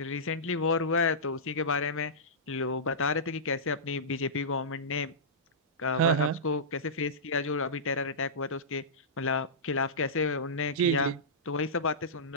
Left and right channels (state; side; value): normal; both; correlation -0.17